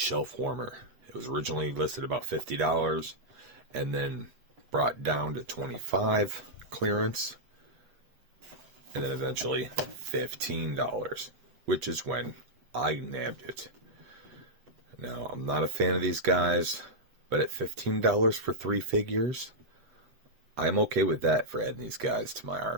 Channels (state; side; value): late; left; 8.2 ms